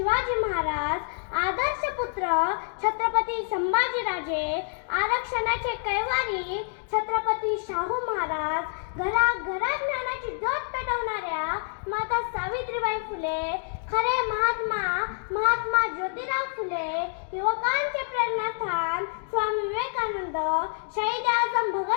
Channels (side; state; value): right; silent; digital silence